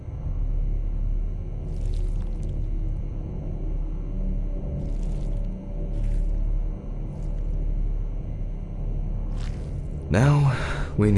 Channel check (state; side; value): identical; both; correlation 1.00